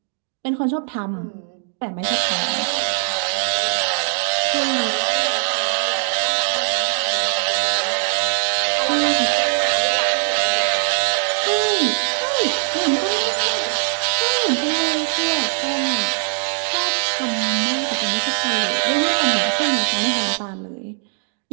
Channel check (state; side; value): silent; left; digital silence